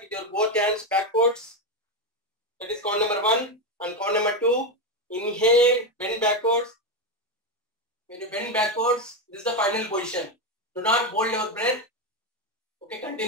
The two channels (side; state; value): both; normal; correlation 0.10